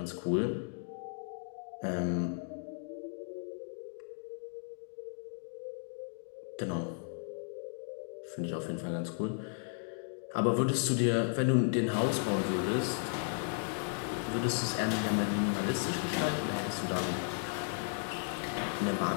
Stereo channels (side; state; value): right; silent; digital silence